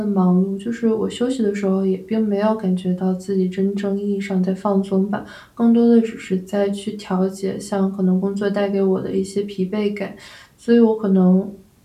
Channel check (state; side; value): identical; both; correlation 1.00